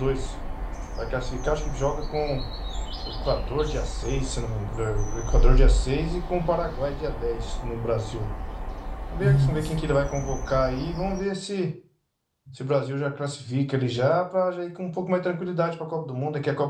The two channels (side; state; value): both; identical; correlation 1.00